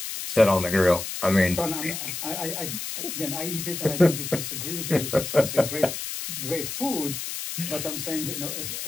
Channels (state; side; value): noise; left; hiss, 6 dB below the sound